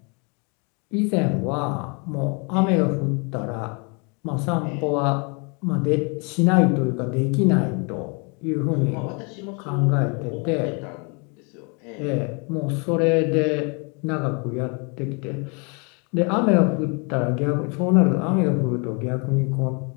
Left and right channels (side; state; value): right; quieter; 33.5 dB